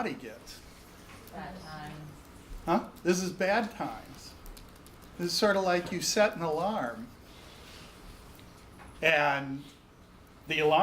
gets? Bad times. Huh? This is bad times. This is sort of like you set an alarm, and the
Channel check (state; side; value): identical; both; correlation 1.00